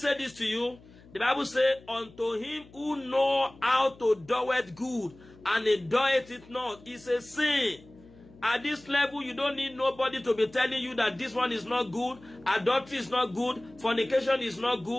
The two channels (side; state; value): left; noise; hum, 24 dB below the sound